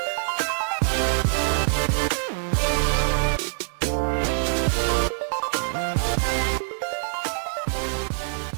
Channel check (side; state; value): left; silent; digital silence